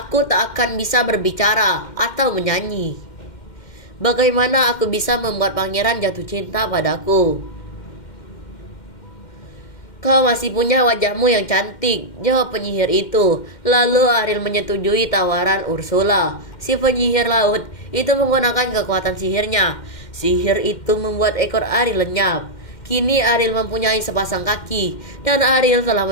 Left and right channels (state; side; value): late; right; 2.1 ms